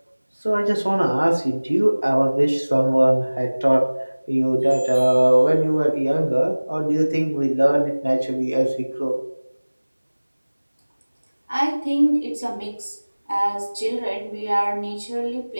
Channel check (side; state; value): both; inverted; correlation -1.00